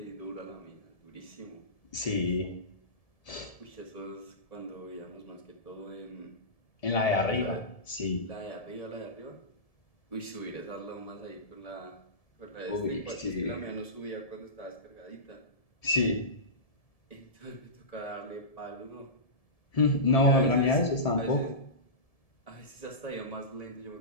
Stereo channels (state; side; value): late; right; 1.7 ms